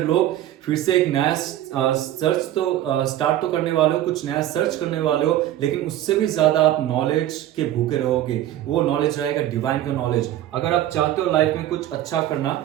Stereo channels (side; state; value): left; quieter; 12.9 dB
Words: लोग फिर से एक नया सर्च तो स्टार्ट तो करने वाले हो, कुछ नया सर्च करने वाले हो, लेकिन उससे भी ज्यादा आप नॉलेज के भूखे रहोगे। वो नॉलेज रहेगा डिवाइन का नॉलेज। अगर आप चाहते हो लाइफ में कुछ अच्छा करना,